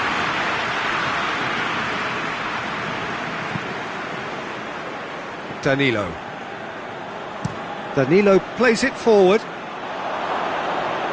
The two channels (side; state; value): both; identical; correlation 1.00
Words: Danilo. Danilo plays it forward.